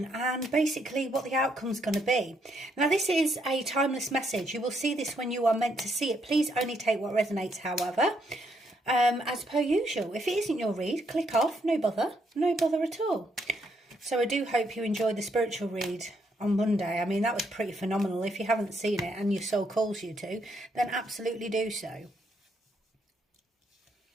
and basically what the outcome's going to be. Now this is a timeless message. You will see this when you are meant to see it. Please only take what resonates, however. As per usual, if it isn't your read, click off, no bother at all. So I do hope you enjoyed the spiritual read on Monday. I mean, that was pretty phenomenal. If you haven't seen it and your soul calls you to, then absolutely do so.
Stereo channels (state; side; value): normal; both; correlation 0.74